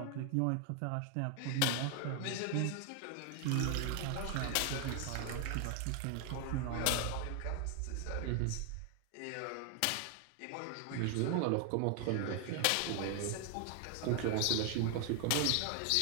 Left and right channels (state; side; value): different; both; correlation 0.01